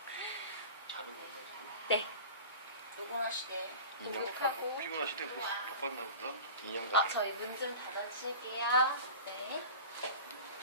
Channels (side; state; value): both; inverted; correlation -0.36